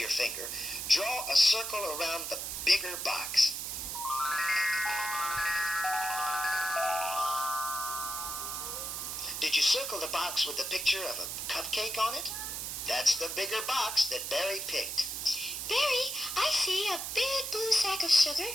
finger, draw a circle around the bigger box. Did you circle the box with the picture of a cupcake on it? That's the bigger box that Barry picked. Barry, I see a big blue sack of sugar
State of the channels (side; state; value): right; noise; hiss, 4 dB below the sound